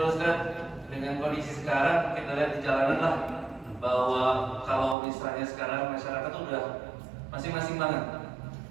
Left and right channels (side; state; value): left; drops out; at 5.0 s